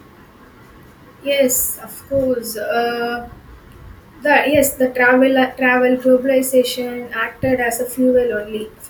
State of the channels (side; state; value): both; identical; correlation 1.00